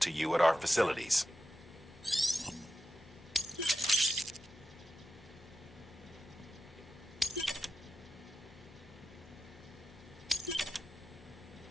you at our facilities.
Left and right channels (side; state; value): both; normal; correlation 0.91